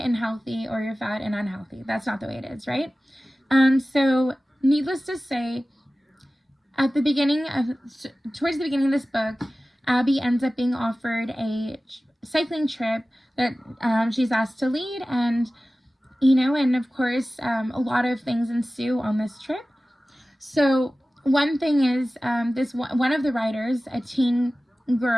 healthy or you're fat and unhealthy. That's not the way it is, right? So needless to say, towards the beginning of this book, Abby ends up being offered a cycling trip that she's asked to lead, and and of course a lot of things ensue on this trip. So one thing is one of the riders, a teen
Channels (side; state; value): both; normal; correlation 0.96